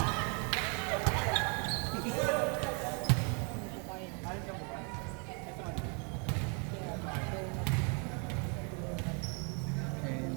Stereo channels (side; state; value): left; quieter; 36.0 dB